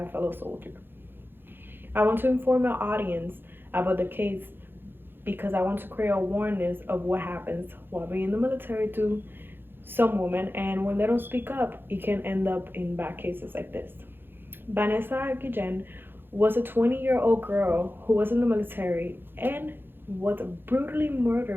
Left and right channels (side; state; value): left; late; 0.10 ms